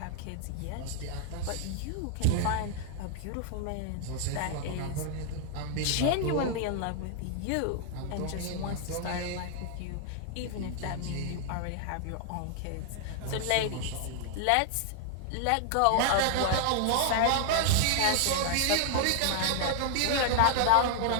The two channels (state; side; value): different; both; correlation 0.00